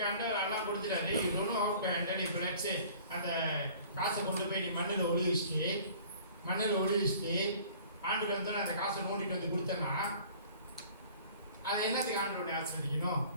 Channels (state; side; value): inverted; both; correlation -0.49